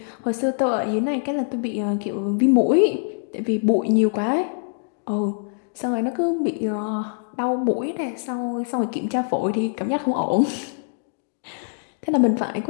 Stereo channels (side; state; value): right; silent; digital silence